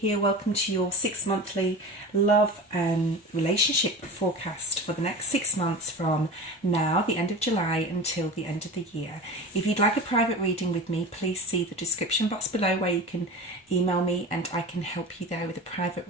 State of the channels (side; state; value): both; normal; correlation 0.32